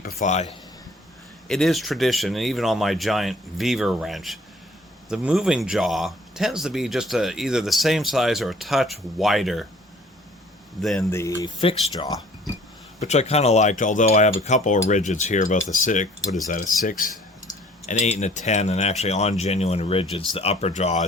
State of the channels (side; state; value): both; normal; correlation 0.54